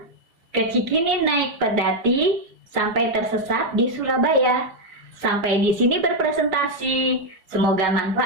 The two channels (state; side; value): late; left; 5.0 ms